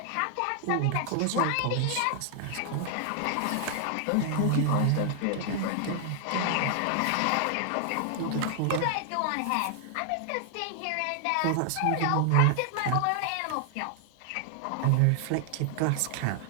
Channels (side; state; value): both; different; correlation 0.00